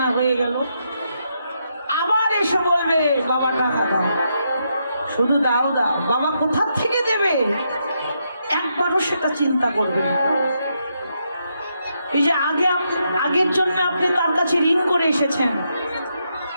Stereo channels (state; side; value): inverted; both; correlation -0.80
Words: হয়ে গেল, আবার এসে বলবে বাবা টাকা দাও, শুধু দাও দাও। বাবা কোথা থেকে দেবে একবারও সেটা চিন্তা করবেন। এই যে আগের জন্য আপনি তার কাছে ঋণ করে এসেছেন,